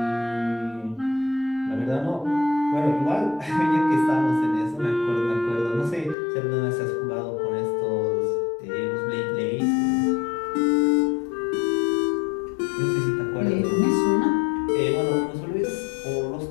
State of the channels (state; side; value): drops out; right; at 6.2 s